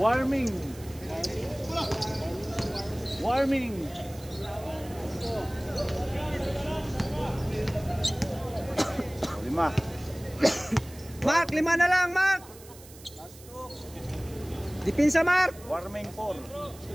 Warming. Lima. Mark, 5 na lang, Mark! Dipinsa, Mark! Warming 4.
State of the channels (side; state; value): right; noise; hiss, 20 dB below the sound